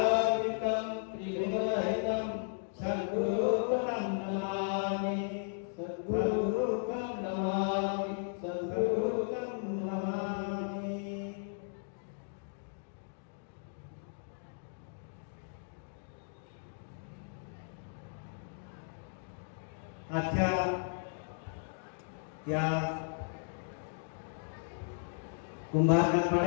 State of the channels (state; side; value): silent; right; digital silence